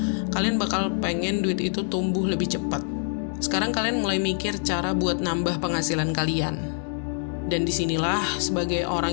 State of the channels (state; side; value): silent; right; 61 dB below the other